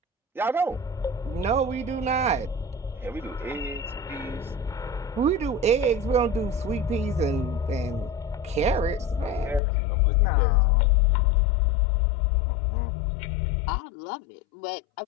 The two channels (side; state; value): right; drops out; at 9.6 s